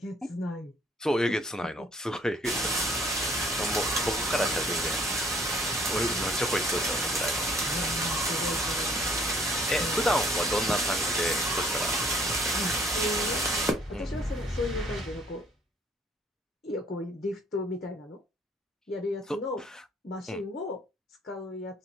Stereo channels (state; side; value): normal; both; correlation 0.59